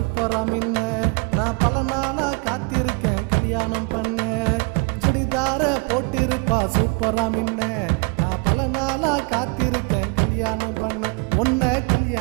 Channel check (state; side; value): quieter; left; 33.3 dB